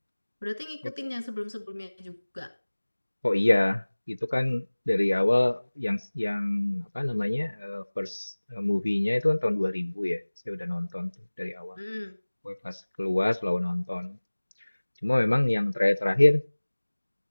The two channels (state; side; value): inverted; both; correlation -1.00